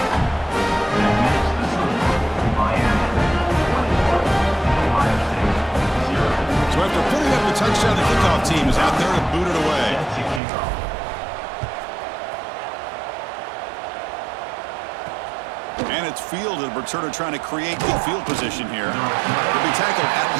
So after putting up the touchdown, the kickoff team is out there to boot it away. And it's fielded. Returner trying to create good field position here. He'll be tackled at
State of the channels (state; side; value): drops out; left; at 10.4 s